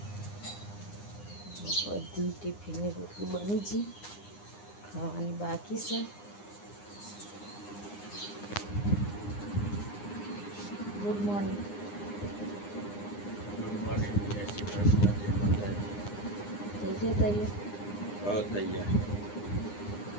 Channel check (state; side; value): late; right; 9.8 ms